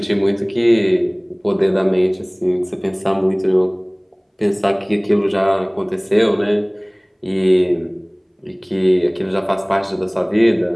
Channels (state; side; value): identical; both; correlation 1.00